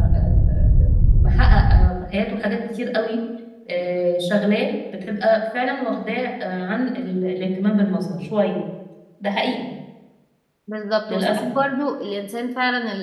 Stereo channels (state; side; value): identical; both; correlation 1.00